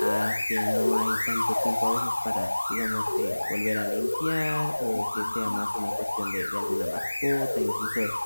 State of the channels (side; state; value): both; inverted; correlation -1.00